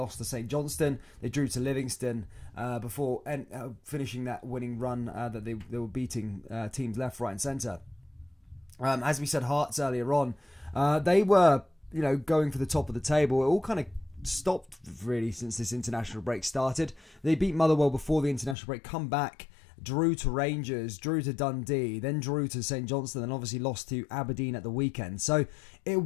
to St Johnstone. They drew to Livingston before finishing that winning run that they were beating teams left, right, and centre. As we said, Hearts earlier on, they were going for the top of the table. It all kind of stopped really since this international break started. They beat Motherwell before the international break, come back, drew to Rangers, drew to Dundee, then drew to St Johnstone, and obviously lost to Aberdeen at the weekend. So it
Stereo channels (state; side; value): drops out; right; at 18.6 s